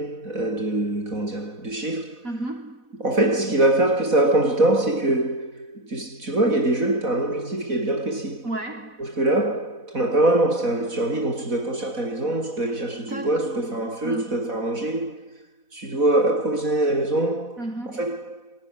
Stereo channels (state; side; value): late; left; 4.1 ms